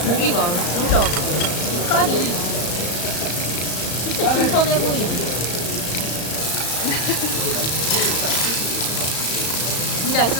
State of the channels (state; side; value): late; right; 34 ms